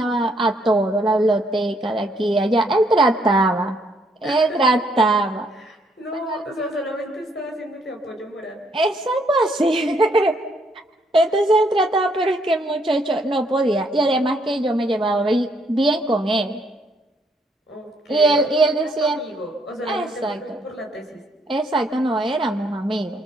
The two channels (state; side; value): normal; both; correlation 0.70